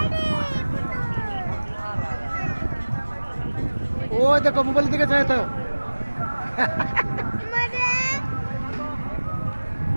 ও দেখো মোবাইলের দিকে চাই তো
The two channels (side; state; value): both; inverted; correlation -1.00